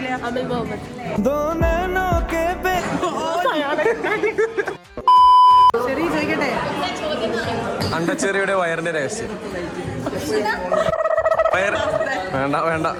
അമിൽ മുഹമ്മദ്. ചെറിയ ചോദിക്കട്ടെ, അണ്ടച്ചെറിയുടെ വയറിന്റെ രഹസ്യം. വേണ്ട.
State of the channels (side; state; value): both; identical; correlation 1.00